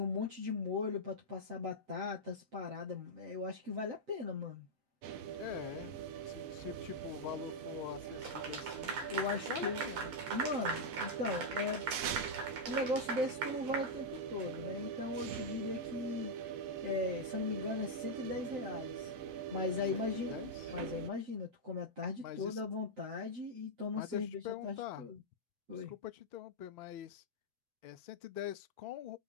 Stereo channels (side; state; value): left; late; 7.8 ms